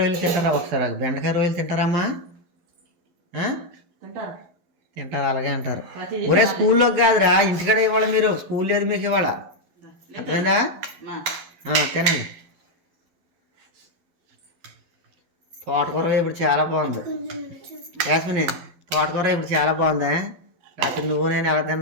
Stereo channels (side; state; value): left; late; 12 ms